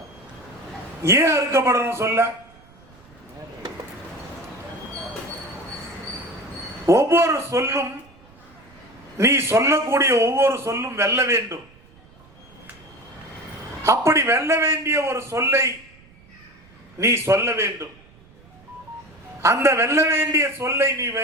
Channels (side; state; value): right; noise; rumble, 26 dB below the sound